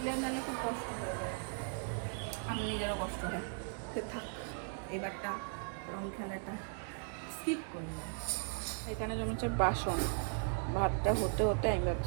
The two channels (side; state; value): left; silent; 53 dB below the other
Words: নালে খুব কষ্ট হয়ে যায়, আমি নিজেরও কষ্ট হয়। তো থাক, এবারটা রং খেলাটা স্কিপ করলাম। এখানে জমেছে বাসন, ভাতটা হতে হতে আমি